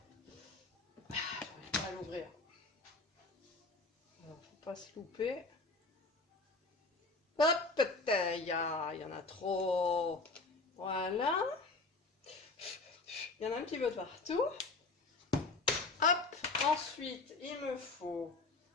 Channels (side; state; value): right; quieter; 3.5 dB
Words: J'arrive pas à l'ouvrir. Alors, faut pas se louper. Hop, il y en a trop. Voilà. Il y en a un petit peu partout. Hop, ensuite, il me faut